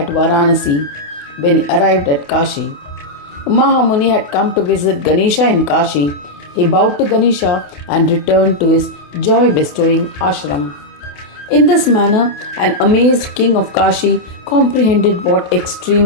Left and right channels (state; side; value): late; right; 28 ms